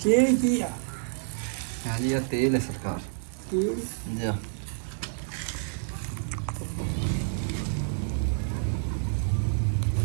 ਕੀ ਆ ਹਾਂਜੀ ਇਹ ਤੇਲ ਹੈ ਸਰਕਾਰ ਕੀ ਜੀ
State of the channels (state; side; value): silent; left; digital silence